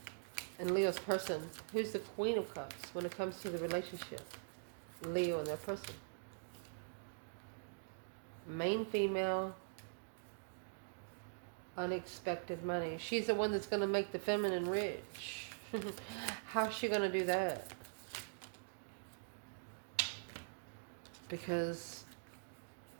And Leo's person. Who's the Queen of Cups when it comes to the relationship? Leo and their person. Main female. Unexpected money. She's the one that's going to make the feminine rich. How's she going to do that? Because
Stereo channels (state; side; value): silent; left; digital silence